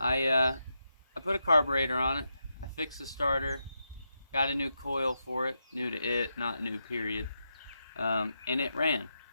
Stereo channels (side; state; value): both; inverted; correlation -0.85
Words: put a carburetor on it, I fixed the starter, got a new coil for it, new to it, not new period, and it ran.